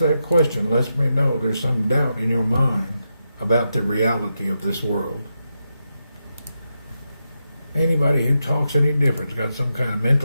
question lets me know there's some doubt in your mind about the reality of this world. Anybody who talks any different's got some kind of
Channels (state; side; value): inverted; both; correlation -0.86